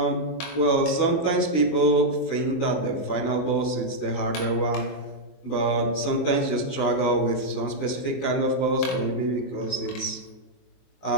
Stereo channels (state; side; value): late; right; 23 ms